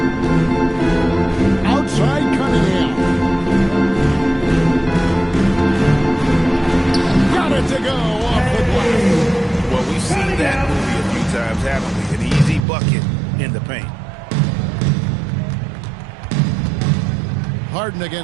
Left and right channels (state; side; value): drops out; left; at 12.6 s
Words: Outside Cunningham. Got it to go off the glass. Well, we've seen that movie a few times, haven't we? An easy bucket in the paint. Harden